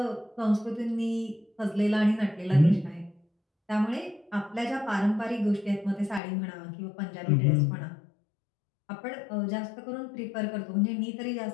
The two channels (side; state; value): right; drops out; at 6.2 s